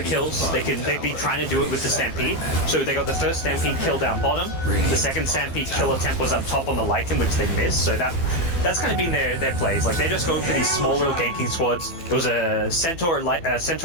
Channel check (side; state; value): right; late; 12 ms